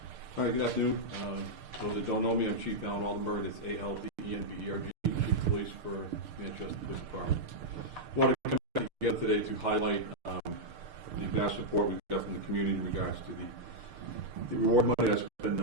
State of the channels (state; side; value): late; left; 6.6 ms